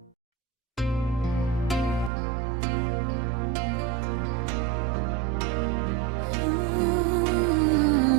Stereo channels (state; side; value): drops out; left; at 2.1 s